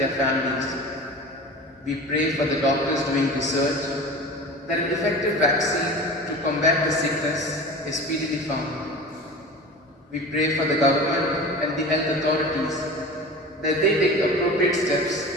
families. We pray for the doctors doing research, that an effective vaccine to combat the sickness is speedily found. We pray for the government and the health authorities, that they take appropriate steps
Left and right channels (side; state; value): both; normal; correlation 0.35